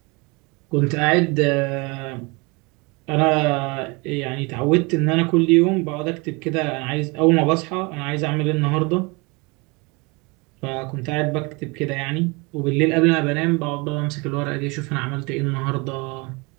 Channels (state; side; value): quieter; left; 27.8 dB